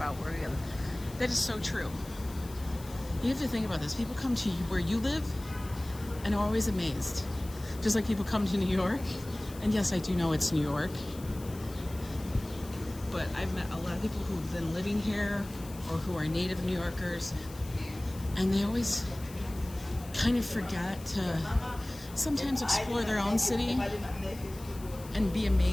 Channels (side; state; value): left; noise; hiss, 18 dB below the sound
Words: where we live. That is so true. You have to think about this. People come to you where you live and are always amazed. Just like people come to New York. And yes, I do know it's New York. But I've met a lot of people who've been living here or who are native New Yorkers. And they always kind of forget to sometimes explore their own city and be